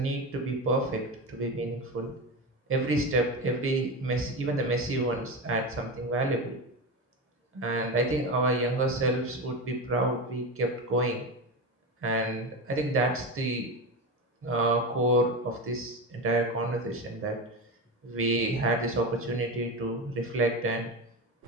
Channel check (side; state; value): both; normal; correlation 0.20